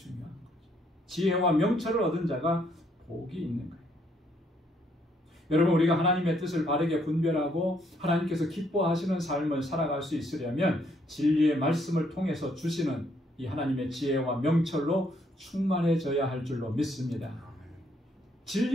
거죠. 지혜와 명철을 얻은 자가 복이 있는 거예요. 여러분, 우리가 하나님의 뜻을 바르게 분별하고 하나님께서 기뻐하시는 삶을 살아갈 수 있으려면 진리의 말씀을 통해서 주시는 이 하나님의 지혜와 명철로 충만해져야 할 줄로 믿습니다.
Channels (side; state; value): both; normal; correlation 0.70